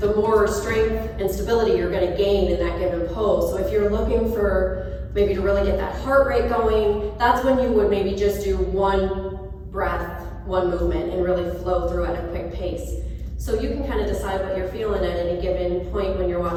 more strength and stability you're going to gain in that given pose. So if you're looking for maybe to really get that heart rate going, that's when you would maybe just do one breath, one movement, and really flow through at a quick pace. So you can kind of decide what you're feeling at any given point when you're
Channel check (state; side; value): identical; both; correlation 1.00